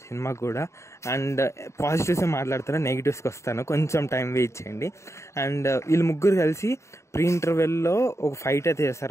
సినిమాకి కూడా. అండ్ పాజిటివ్స్ మాట్లాడతాను, నెగిటివ్స్కి వస్తాను, కొంచెం టైం వెయిట్ చేయండి. అండ్ వీళ్ళు ముగ్గురు కలిసి ప్రీ ఇంటర్వెల్లో ఒక ఫైట్ అయితే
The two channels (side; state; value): right; late; 0.14 ms